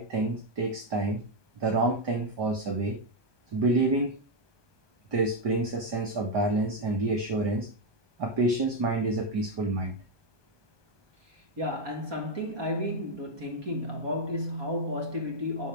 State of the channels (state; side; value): late; left; 1.2 ms